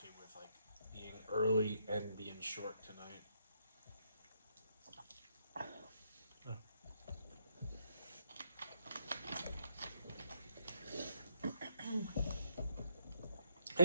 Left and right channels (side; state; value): both; inverted; correlation -0.75